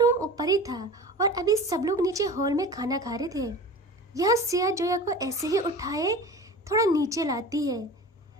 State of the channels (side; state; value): both; normal; correlation 0.36